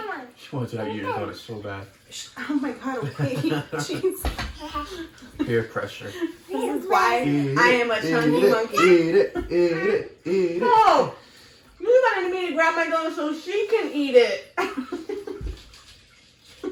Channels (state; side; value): identical; both; correlation 1.00